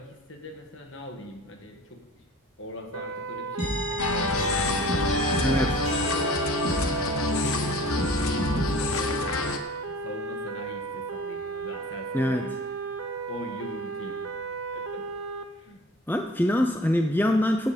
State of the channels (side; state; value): both; normal; correlation 0.45